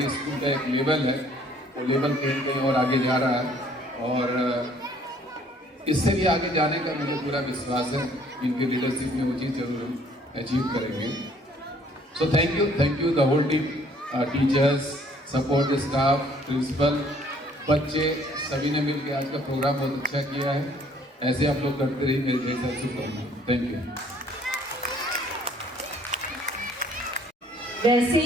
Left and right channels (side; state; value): both; normal; correlation 0.60